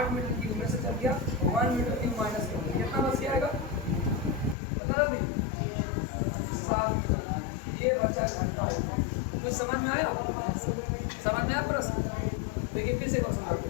मीटर क्यूब में से चल गया 1 मीटर क्यूब माइनस कितना बच जाएगा? बता रहे 7 मीटर। ये बचा घन का आयतन। कुछ समझ में आया? समझ में आया प्रश्न? देखिए फिर से क्वेश्चन करते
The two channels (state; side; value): drops out; right; at 4.5 s